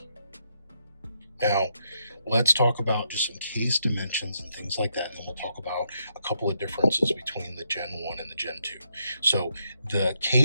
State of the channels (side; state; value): both; inverted; correlation -0.78